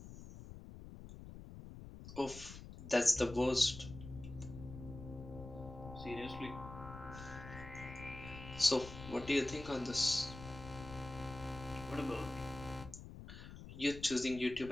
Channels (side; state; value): left; noise; rumble, 13 dB below the sound